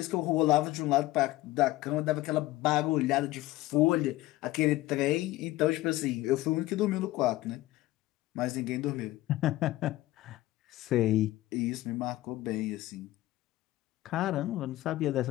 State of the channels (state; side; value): quieter; right; 17.1 dB